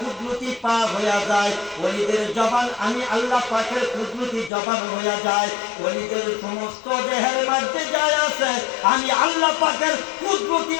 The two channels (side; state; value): right; drops out; at 4.5 s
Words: পা হইয়া যায়, ওলিদের জবান আমি আল্লাহ পাকের কুদরতি জবান হইয়া যায়, ওলিদের সমস্ত দেহের মধ্যে যায় আছে আমি আল্লাহ পাকের কুদরতি